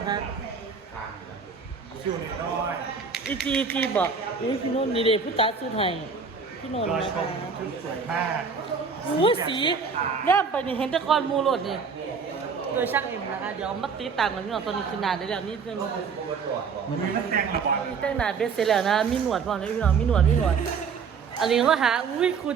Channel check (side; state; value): left; quieter; 5.5 dB